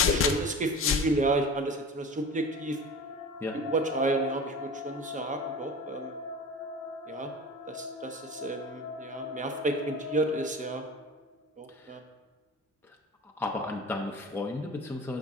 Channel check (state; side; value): normal; both; correlation 0.35